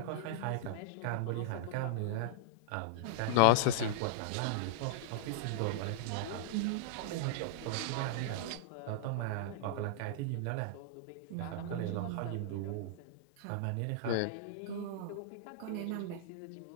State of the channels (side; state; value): both; different; correlation -0.01